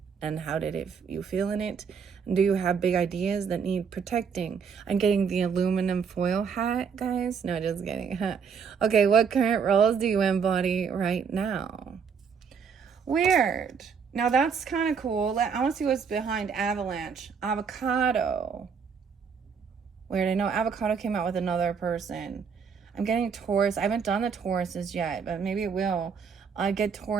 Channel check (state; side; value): quieter; left; 6.3 dB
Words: And how did you feel in it? Do you have big ideas that need protecting? I'm getting the aluminum foil hat, guys. No, just kidding. Okay, what current roles do you embody right now? Weird. Now that's kind of cool. I want to see what's behind avalanche. Avocado. Weird. I know avocado came out with another person. I'm getting Taurus. I haven't done the Tauruses yet, but maybe it will. I get